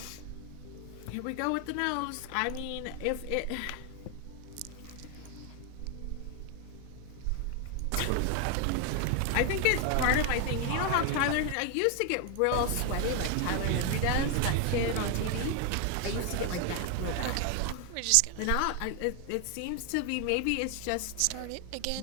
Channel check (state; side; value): different; both; correlation 0.01